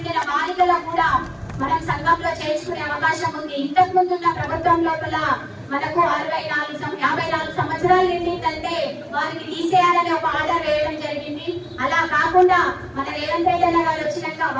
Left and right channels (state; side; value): identical; both; correlation 1.00